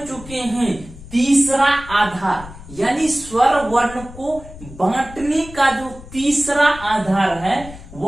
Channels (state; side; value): noise; left; rumble, 16 dB below the sound